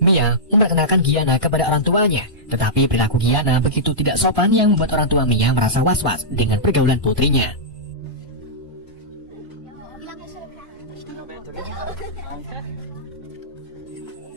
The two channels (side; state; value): both; normal; correlation -0.12